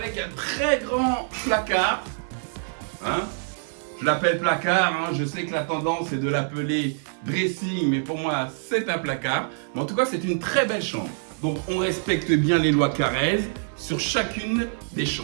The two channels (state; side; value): silent; left; 62 dB below the other